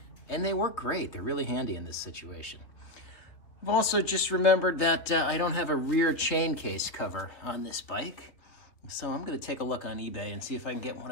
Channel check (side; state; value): right; late; 2.9 ms